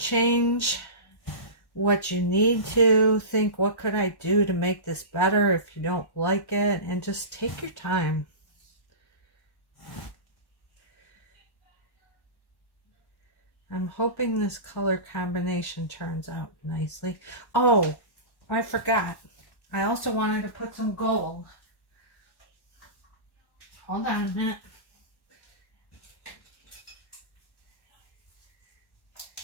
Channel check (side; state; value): right; late; 1.1 ms